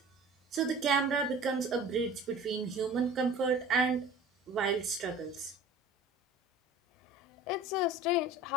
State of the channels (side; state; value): both; normal; correlation 0.42